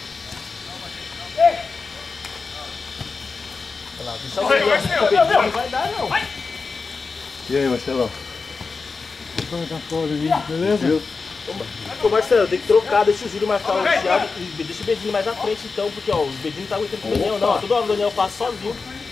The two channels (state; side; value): quieter; right; 4.5 dB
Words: Não vai dar, não. E aí, Marcelão? Beleza? Ô Marcelo, tem que trocar, deixa o Júlio marcar o Thiago e deixa o Bedinho mais à frente então, porque ó, o Bedinho não tá aguentando com o Daniel não, toda hora o Daniel passa sozinho.